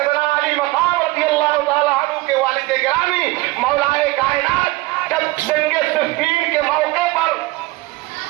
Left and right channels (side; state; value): left; quieter; 20.5 dB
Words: علی مقام رضی اللہ تعالیٰ عنہ کے والد گرامی مولا کائنات جب جنگ صفین کے موقع پر